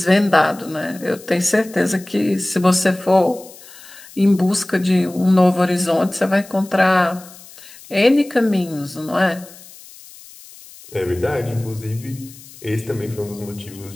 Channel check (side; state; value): left; noise; hiss, 20 dB below the sound